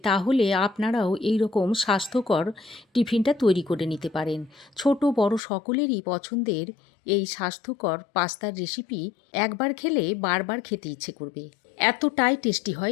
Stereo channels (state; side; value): drops out; right; at 5.4 s